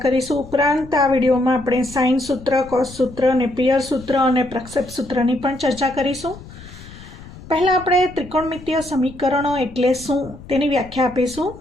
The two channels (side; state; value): left; noise; rumble, 17 dB below the sound